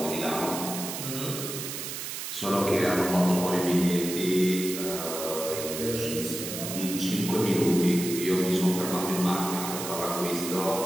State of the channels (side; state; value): right; noise; hiss, 6 dB below the sound